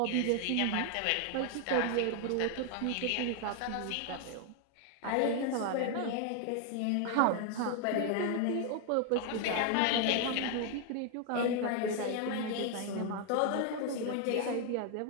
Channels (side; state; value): both; different; correlation 0.00